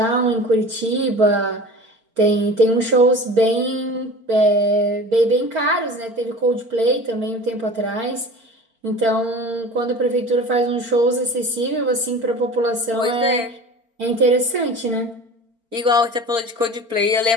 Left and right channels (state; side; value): late; left; 4.4 ms